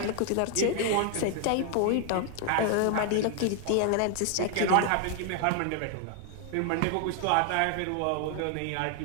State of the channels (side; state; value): both; different; correlation 0.00